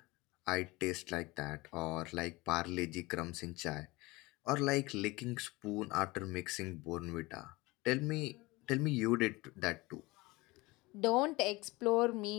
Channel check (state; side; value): quieter; right; 22.3 dB